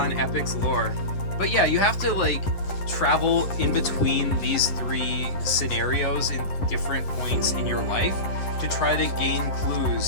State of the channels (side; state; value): right; late; 10 ms